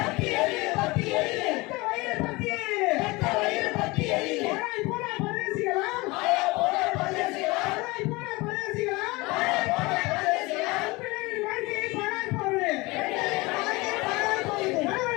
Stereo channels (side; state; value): right; quieter; 23.3 dB